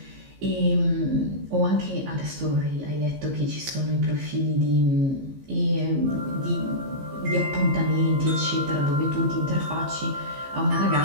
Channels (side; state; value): left; late; 15 ms